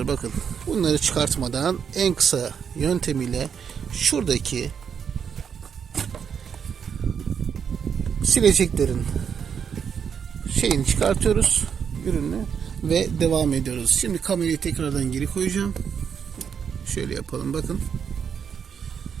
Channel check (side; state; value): left; quieter; 7.2 dB